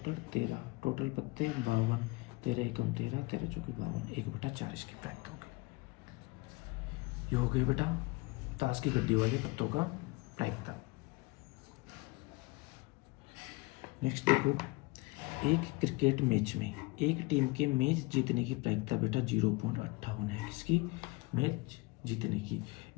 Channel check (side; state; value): right; quieter; 25.1 dB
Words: 13, टोटल पत्ते 52, 13 एकम 13, 13 चौके 52, 1/4 इसकी प्रायिकता होगी। ये हो गए बेटा ताश की गड्डी वाले पत्तों का प्रायिकता। नेक्स्ट देखो, एक क्रिकेट मैच में एक टीम के मैच जीतने की प्रायिकता बेटा 0.58 है। किसकी? मैच जीतने की।